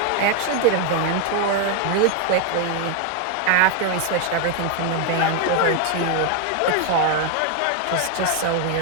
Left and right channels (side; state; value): both; different; correlation 0.01